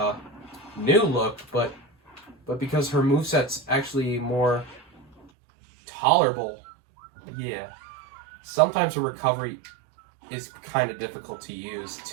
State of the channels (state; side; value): drops out; left; at 5.2 s